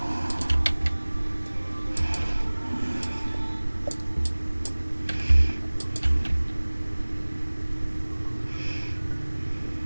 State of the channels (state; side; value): inverted; both; correlation -1.00